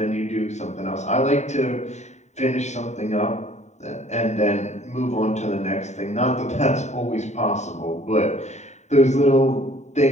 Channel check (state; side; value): late; right; 0.34 ms